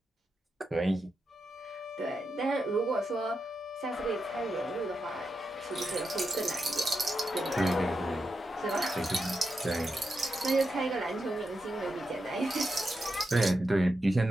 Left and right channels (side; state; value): both; normal; correlation 0.86